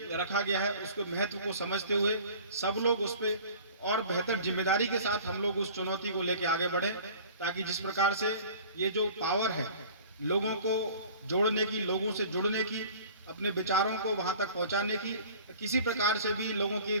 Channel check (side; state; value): both; inverted; correlation -0.46